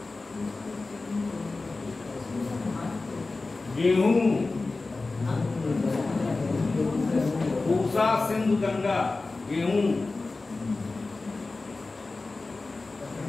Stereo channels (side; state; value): right; quieter; 3.6 dB